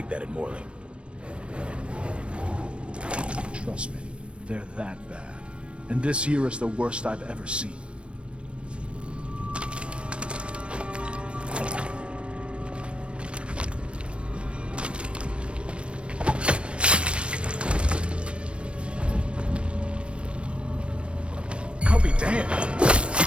that in Morley. Trust me, they're that bad. And this year is the worst I've ever seen. I'll be damned.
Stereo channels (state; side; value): late; left; 0.059 ms